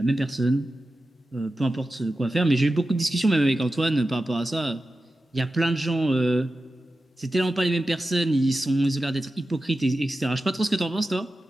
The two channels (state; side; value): normal; both; correlation 0.93